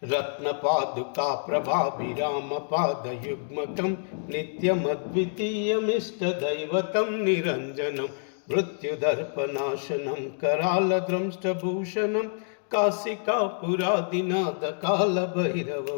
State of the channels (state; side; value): silent; right; digital silence